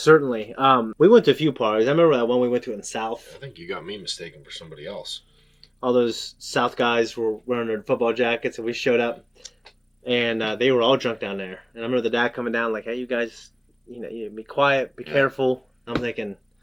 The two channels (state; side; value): identical; both; correlation 1.00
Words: We went to a few parties. I remember that one we went to in the South. I think you got me mistaken for somebody else. All those South guys were wearing their football jackets, and we showed up, and they were all drunk down there. And I remember the dad coming down like, "Hey, you guys, you be quiet, be careful." I'm thinking,